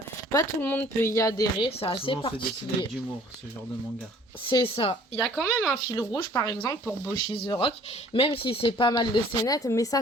pas tout le monde peut y adhérer, c'est assez Souvent, c'est dessiné avec particulier. d'humour, ce genre de manga. C'est ça. Il y a quand même un fil rouge, par exemple, pour Boshi the Rock, même si c'est pas mal de scénettes, mais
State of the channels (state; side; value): normal; both; correlation 0.54